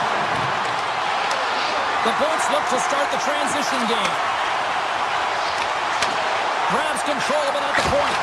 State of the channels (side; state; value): both; identical; correlation 1.00